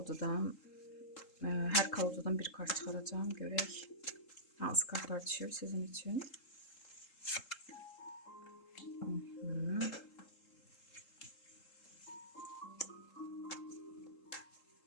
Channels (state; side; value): late; right; 3.7 ms